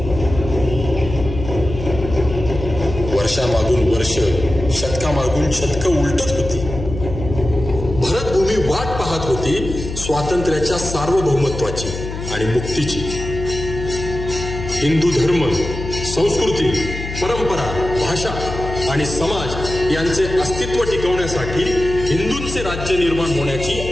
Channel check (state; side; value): noise; left; hum, 8 dB below the sound